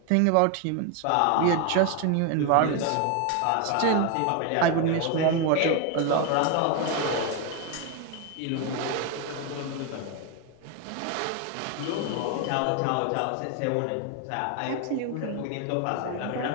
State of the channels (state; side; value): different; both; correlation 0.01